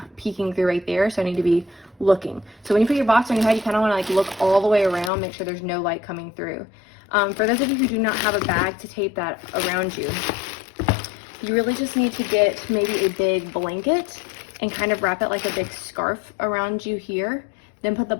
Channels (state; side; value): drops out; right; at 5.1 s